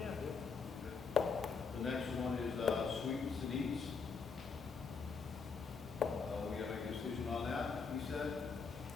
The next one is sweets and eats. We have a decision on that, he said.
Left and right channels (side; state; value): right; quieter; 5.3 dB